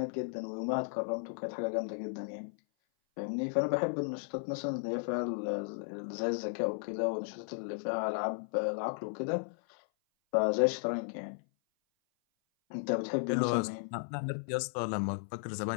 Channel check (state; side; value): silent; right; 55 dB below the other